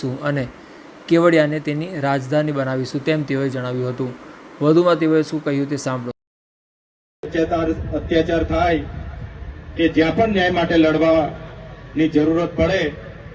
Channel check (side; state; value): both; identical; correlation 1.00